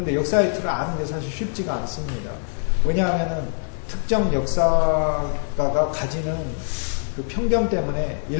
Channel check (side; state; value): right; silent; digital silence